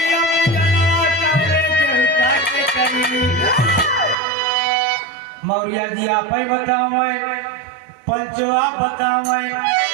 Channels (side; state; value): left; drops out; at 4.2 s